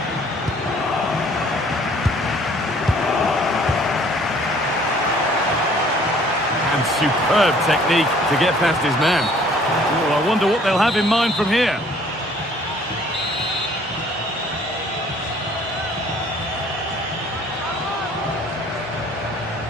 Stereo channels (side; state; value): both; normal; correlation 0.57